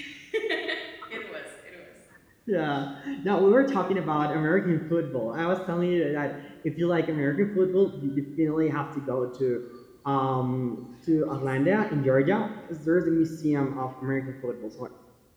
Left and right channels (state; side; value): identical; both; correlation 1.00